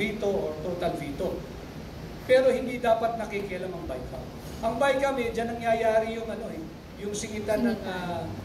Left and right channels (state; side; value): identical; both; correlation 1.00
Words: or total veto. Pero hindi dapat nakikialam ang BICAM. Ang BICAM, dyan nangyayari yung singitan